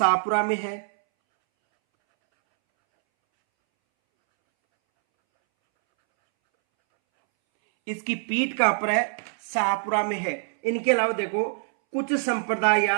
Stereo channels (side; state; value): left; silent; 62 dB below the other